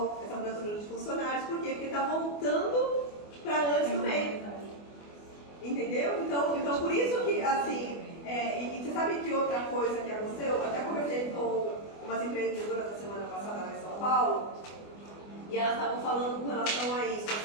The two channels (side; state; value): right; late; 24 ms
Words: essa mudança do número de funcionários, por quê? Porque está voltando para antes do meio, entendeu? Então por isso que assim... e você sabe que outra coisa que aconteceu? Eu até conversei com umas empreendedoras da semana passada lá em São Paulo e elas estavam falando com relação a isso,